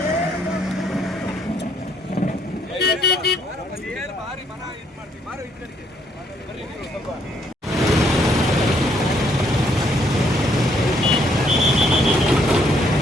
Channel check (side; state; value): both; normal; correlation 0.70